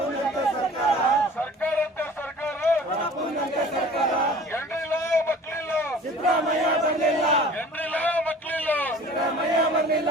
ಸರ್ಕಾರ, ಸರ್ಕಾರಂತೆ ಸರ್ಕಾರ, ರಪ್ಪುನಂತೆ ಸರ್ಕಾರ. ಎಂಡ್ರಿಲ್ಲ ಮಕ್ಳಿಲ್ಲ, ಸಿದ್ದರಾಮಯ್ಯ ಬರಲಿಲ್ಲ, ಎಂಡ್ರಿಲ್ಲ ಮಕ್ಳಿಲ್ಲ. ಸಿದ್ದರಾಮಯ್ಯ ಬರಲಿಲ್ಲ.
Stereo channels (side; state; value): both; normal; correlation 0.45